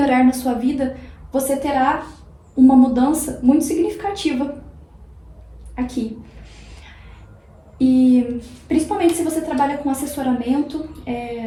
na sua vida, você terá uma mudança muito significativa aqui. E principalmente se você trabalha com assessoramento,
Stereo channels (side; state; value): both; identical; correlation 1.00